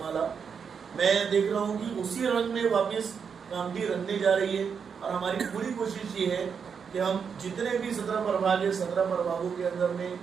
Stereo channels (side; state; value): left; quieter; 6.5 dB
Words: मैं देख रहा हूँ कि उसी रंग में वापस कामठी रंगने जा रही है और हमारी पूरी कोशिश ये है कि हम जितने भी 17 प्रभाग है, 17 प्रभागों के अंदर में